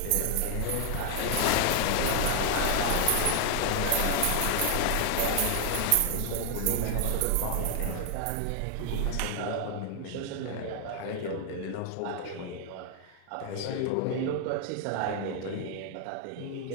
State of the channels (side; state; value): both; different; correlation 0.00